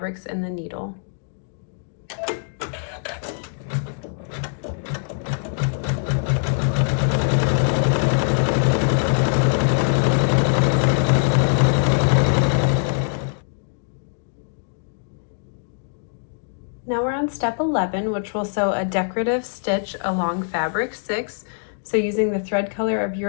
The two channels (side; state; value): right; silent; digital silence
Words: in the needle. Now we're on step 11, which will sew a decorative stitch along fabric 6. So using the thread color of